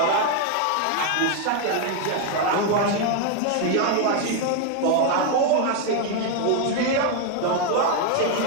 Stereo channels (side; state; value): both; different; correlation 0.01